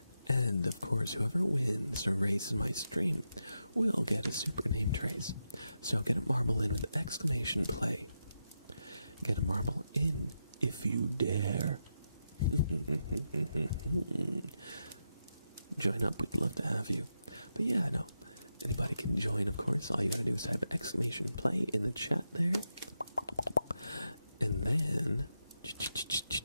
And of course, whoever wins a race in my stream will get a super name trace. So get a marble in with exclamation play. Get a marble in if you dare. Join up, we'd love to have you. But yeah, no, anybody can join, of course. All you gotta do is type exclamation play in the chat there. And then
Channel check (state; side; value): inverted; both; correlation -0.86